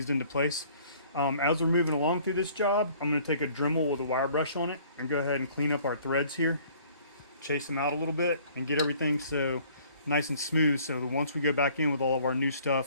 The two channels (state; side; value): inverted; both; correlation -0.56